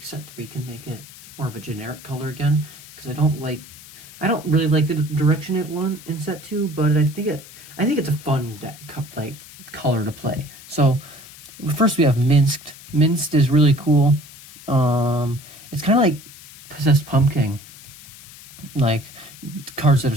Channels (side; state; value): left; noise; hiss, 19 dB below the sound